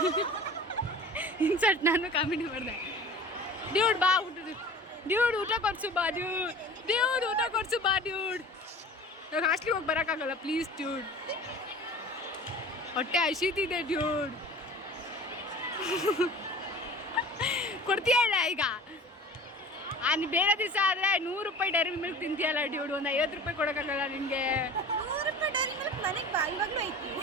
ಇನ್ಸರ್ಟ್ ನಾನು ಕಾಮಿಡಿ ಮಾಡಿದೆ. ಡ್ಯೂಡ್ ಬಾ ಡ್ಯೂಡ್ ಊಟ ಕೊಡ್ಸು ಬಾ ಡ್ಯೂಡ್ ಊಟ ಕೊಡ್ಸು ಬಾ ಡ್ಯೂಡ್. ಇವಾಗ ಹಾಸ್ಟ್ಲಿಗೆ ಹೋಗಿ ಬರೋಕ್ಕಾಗಲ್ಲ ಪ್ಲೀಸ್ ಡ್ಯೂಡ್, ಹೊಟ್ಟೆ ಹಸಿತಿದೆ ಡ್ಯೂಡ್. ಕೊಡ್ತೀಯ ಇಲ್ಲ ಈಗ? ಬೇರೆ ದಿವಸ ಆದರೆ 100 ರೂಪಾಯಿ ಡೈರಿ ಮಿಲ್ಕ್ ತಿಂತೀಯಲ್ಲ ಡ್ಯೂಡ್, ಒಂದು 50 ರೂಪಾಯಿ ಕೊಡೋಕ್ಕಾಗಲ್ಲ ನಿನಗೆ.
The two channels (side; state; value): both; normal; correlation 0.40